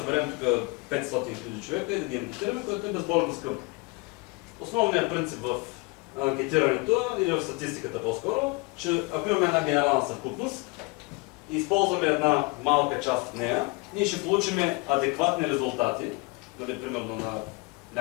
тук 500 000 човека и да ги анкетираме, което е безбожно скъпо. Основният принцип в анкетирането или в статистиката по-скоро, че ако имаме една генерална съвкупност и използваме една малка част от нея, ние ще получим адекватни резултати, дали примерно на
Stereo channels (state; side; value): quieter; right; 27.0 dB